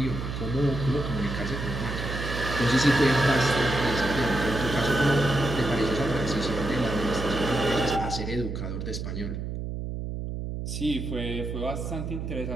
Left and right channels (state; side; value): noise; right; hum, 5 dB below the sound